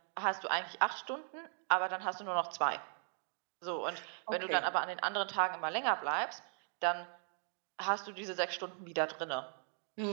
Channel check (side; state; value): left; silent; 52 dB below the other